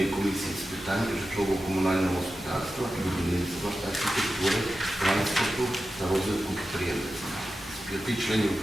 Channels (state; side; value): normal; both; correlation 0.92